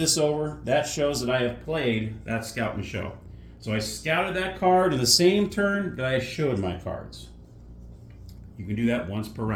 over. That shows that I have played that scout and show. So I scouted that card in the same turn that I showed my cards. You can do that once per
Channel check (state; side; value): identical; both; correlation 1.00